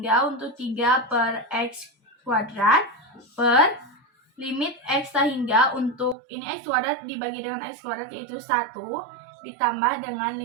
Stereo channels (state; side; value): drops out; left; at 6.2 s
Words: untuk 3 per X kuadrat per limit X tak hingga untuk ini X kuadrat dibagi dengan X kuadrat yaitu 1 ditambah dengan